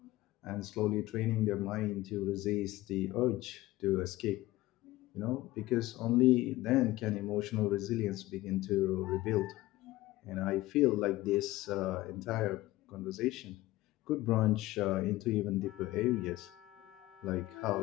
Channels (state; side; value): quieter; right; 17.6 dB